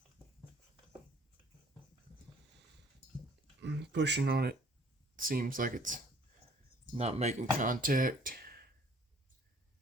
Pushing on it seems like it's not making contact.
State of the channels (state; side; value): normal; both; correlation 0.56